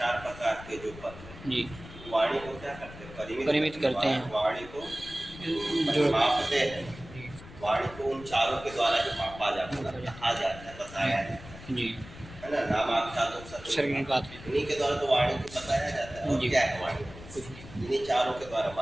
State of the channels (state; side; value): noise; left; rumble, 16 dB below the sound